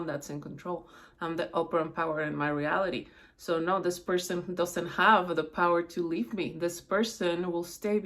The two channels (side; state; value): both; identical; correlation 1.00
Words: that's in control. I'm the operant power in my reality. So no, this person doesn't have the power to leave me. This person will stay